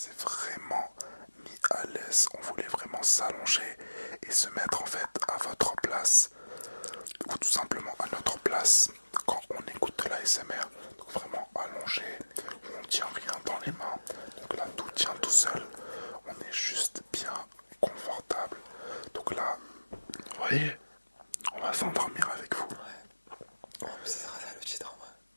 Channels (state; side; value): inverted; both; correlation -1.00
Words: vraiment mis à l'aise. On voulait vraiment s'allonger et se mettre en fait à votre place. Ou tout simplement à notre place quand on écoute de l'ASMR. Donc vraiment allongé, on ne tient rien dans les mains. Donc là tout tient tout seul. On est juste bien confortable. Donc là, vous voyez, on va s'endormir avec vous. Ouais. Ça sera ça le titre en vrai.